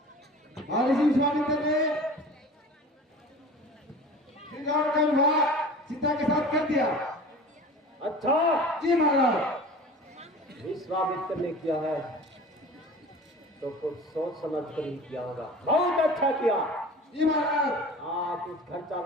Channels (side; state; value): both; normal; correlation 0.39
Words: महर्षि विश्वामित्र ने श्री राम का विवाह सीता के साथ कर दिया। अच्छा। जी महाराज। विश्वामित्र ने किया है तो कुछ सोच समझ कर ही किया होगा। बहुत अच्छा किया। जी महाराज। हाँ कुछ खर्चा